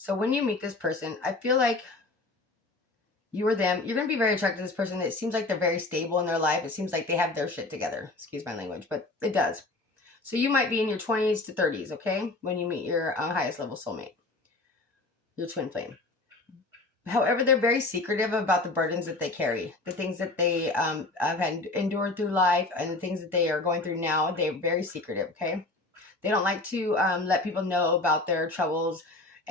when you meet this person, I feel like you or them, you're going to be very attracted to this person. It seems like they're very stable in their life. It seems like they have their shit together. Excuse my language, but it does. So you might be in your 20s to 30s, okay? When you meet your highest level soulmate, your twin flame. However, they're very secretive about the burdens that they carry, the things that they have had endured through life, and the things that they are going through now. They're very secretive, okay? They don't like to let people know about their troubles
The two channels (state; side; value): quieter; right; 3.1 dB